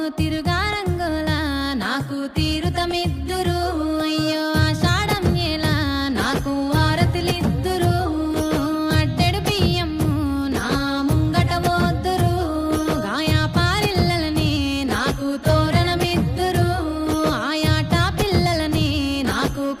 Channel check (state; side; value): identical; both; correlation 1.00